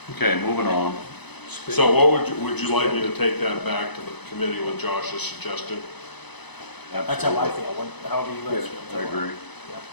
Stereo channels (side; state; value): right; late; 0.99 ms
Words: Okay, moving on. So what would you like me to take that back to the committee with Josh's suggestion? That's how I feel, however you guys feel. I agree.